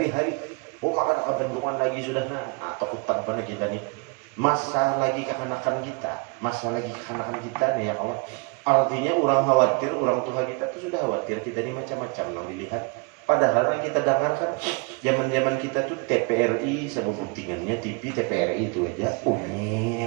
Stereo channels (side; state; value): left; quieter; 31.5 dB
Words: Oh maka kebenduan lagi sudah atau hutan pada kita nih. Masa lagi kekanakan kita nih ya kawan. Artinya orang khawatir, orang tua kita tuh sudah khawatir kita ini macam-macam nang dilihat. Padahal yang kita dengarkan zaman-zaman kita tuh TPRI sama buktingannya TV TPRI itu aja.